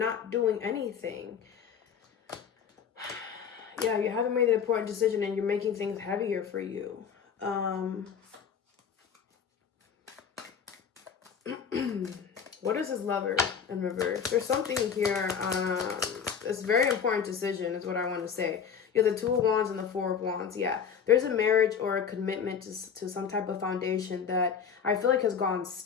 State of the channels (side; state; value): right; quieter; 7.1 dB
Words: doing anything. Yeah, you haven't made an important decision and you're making things heavier for you. What is this Lover in reverse? There's something here. It's a very important decision is what I want to say. You have the 2 of Wands and the 4 of Wands. Yeah, there's a marriage or a commitment to some type of foundation that I feel like has gone